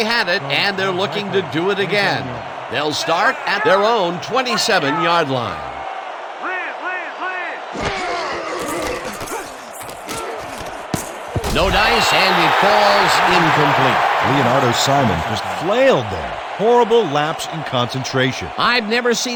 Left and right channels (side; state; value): both; identical; correlation 1.00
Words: had it, and they're looking to do it again. They'll start at their own 27-yard line. No dice, and it falls incomplete. Leonardo Simon just flailed there. Horrible lapse in concentration. I've never